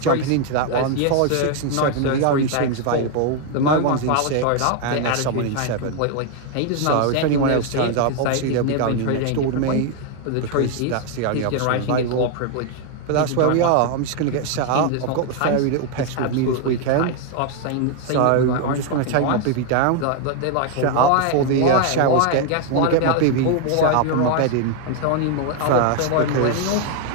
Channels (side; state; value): both; different; correlation 0.00